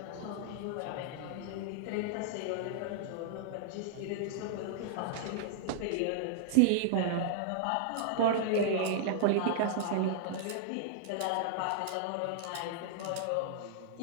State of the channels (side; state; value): both; different; correlation -0.01